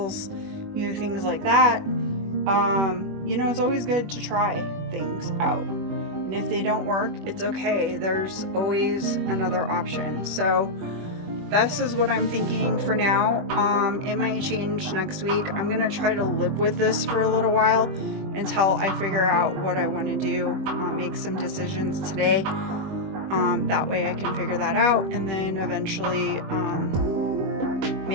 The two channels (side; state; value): left; late; 21 ms